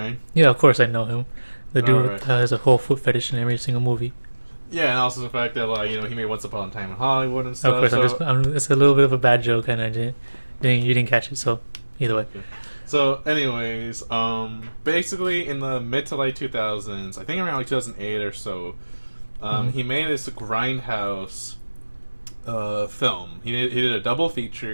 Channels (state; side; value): inverted; both; correlation -1.00